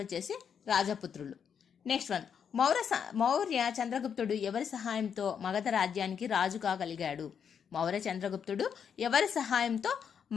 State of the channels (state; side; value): quieter; right; 7.5 dB